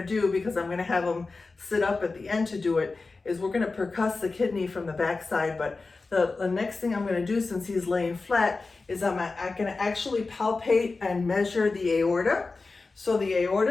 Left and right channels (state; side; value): quieter; right; 3.8 dB